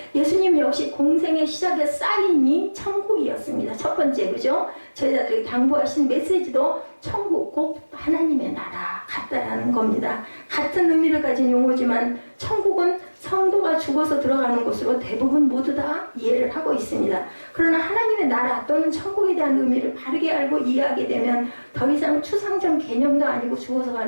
예수님 역시 공생의 시작의 사인이 천국이었습니다. 첫 번째, 그죠? 제자들에게 당부하신 메시지도 천국 곧 하나님의 나라 같다라는 겁니다. 같은 의미를 가진 용어지만 천국은 성도가 죽어서 들어가는 곳으로 대부분 모두 다 이해를 하고 있습니다. 그러나 하나님의 나라 또는 천국에 대한 의미를 바르게 알고 이해하게 되면 더 이상 추상적 개념도 아니고 죽어서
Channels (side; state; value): both; inverted; correlation -1.00